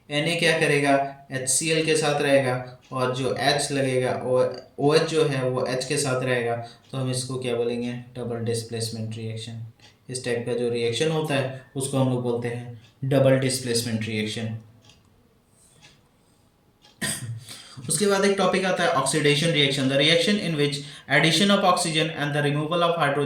Na क्या करेगा HCl के साथ रहेगा और जो H लगेगा OH जो है वो H के साथ रहेगा, तो हम इसको क्या बोलेंगे डबल डिस्प्लेसमेंट रिएक्शन। इस टाइप का जो रिएक्शन होता है उसको हम लोग बोलते हैं डबल डिस्प्लेसमेंट रिएक्शन। उसके बाद एक टॉपिक आता है oxidation reaction. The reaction in which addition of oxygen and the removal of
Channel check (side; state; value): both; identical; correlation 1.00